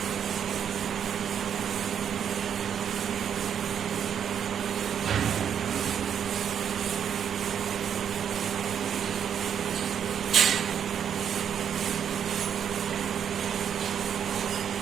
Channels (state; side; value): quieter; left; 8.3 dB